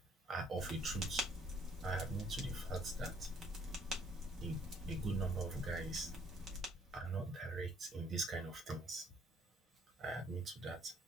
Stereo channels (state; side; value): normal; both; correlation 0.63